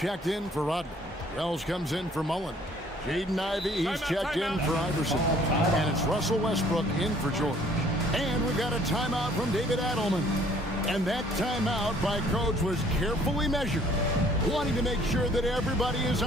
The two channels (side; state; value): both; normal; correlation 0.59